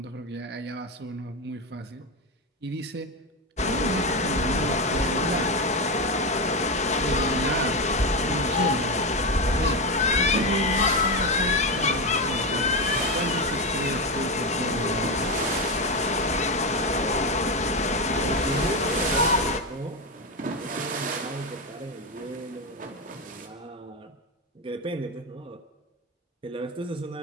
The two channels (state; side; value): normal; both; correlation 0.12